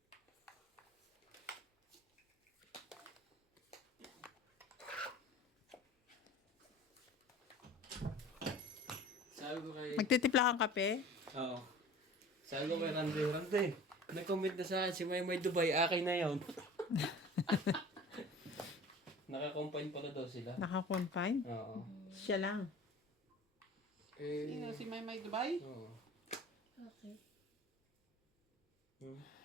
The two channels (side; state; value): both; normal; correlation 0.42